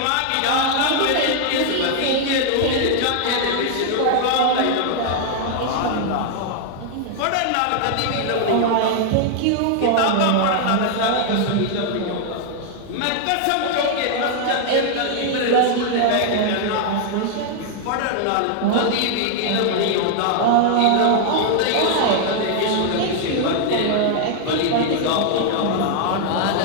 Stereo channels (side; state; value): both; different; correlation 0.00